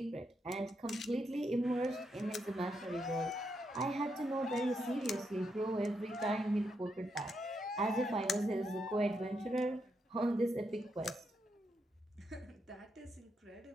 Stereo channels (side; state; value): both; normal; correlation 0.81